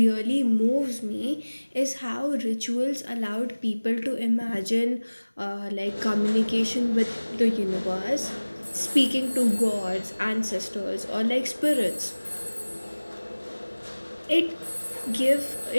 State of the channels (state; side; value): inverted; both; correlation -1.00